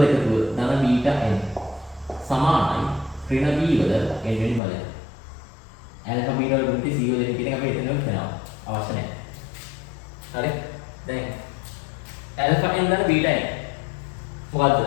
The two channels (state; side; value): drops out; right; at 4.6 s